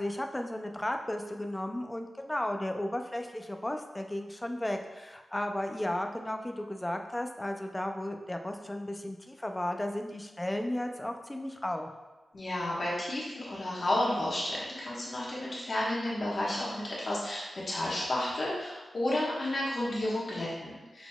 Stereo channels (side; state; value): both; normal; correlation 0.95